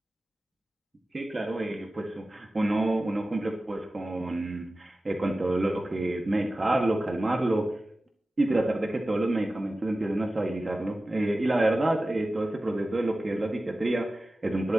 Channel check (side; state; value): both; normal; correlation 0.95